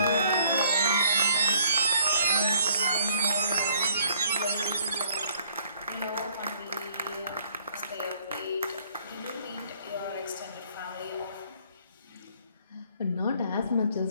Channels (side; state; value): both; inverted; correlation -0.62